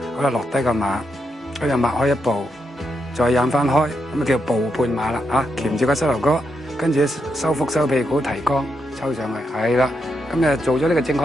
好啦，落低個馬，跟住擘開一步，再引翻開，咁啊叫步半馬啦嚇，鉗住個膝頭哥，跟住收腹收屁股提肛，抽上去，係啦。咁啊，做咗呢個正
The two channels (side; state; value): both; normal; correlation 0.83